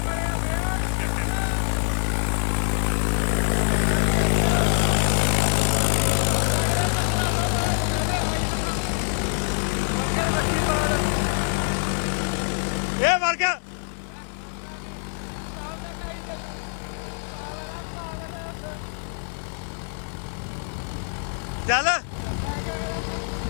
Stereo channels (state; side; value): silent; right; 55 dB below the other